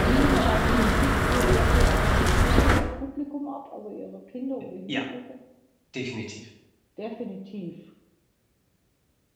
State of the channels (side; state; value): both; identical; correlation 1.00